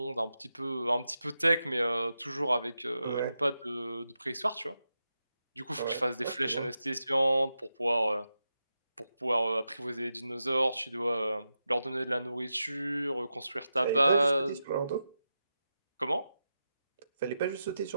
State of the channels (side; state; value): both; inverted; correlation -0.89